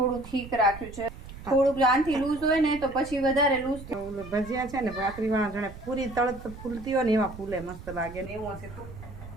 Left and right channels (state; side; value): noise; right; rumble, 14 dB below the sound